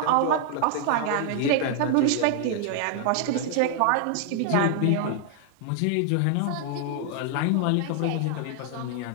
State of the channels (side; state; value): both; different; correlation 0.00